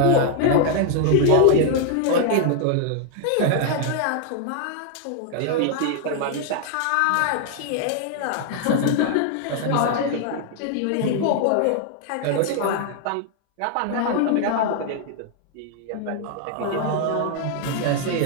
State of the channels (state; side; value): different; both; correlation 0.00